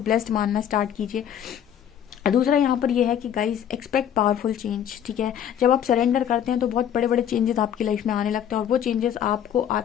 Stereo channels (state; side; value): quieter; right; 9.7 dB